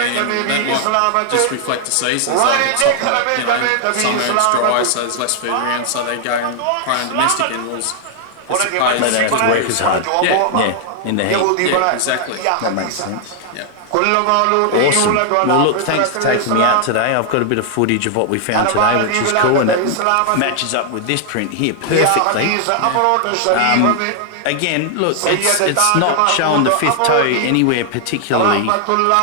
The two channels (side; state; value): both; different; correlation 0.00